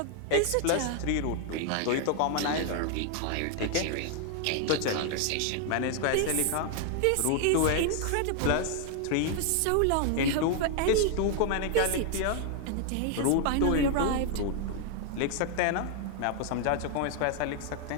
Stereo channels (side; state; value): both; different; correlation 0.00